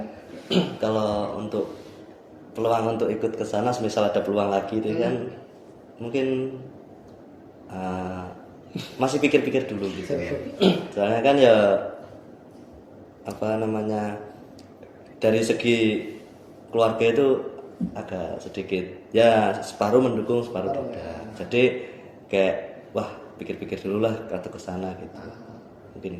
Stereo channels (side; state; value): both; identical; correlation 1.00